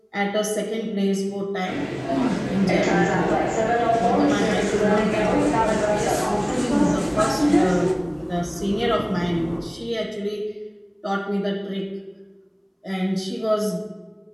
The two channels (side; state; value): both; identical; correlation 1.00